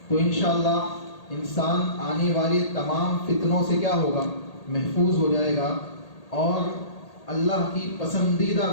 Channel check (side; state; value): right; late; 1.8 ms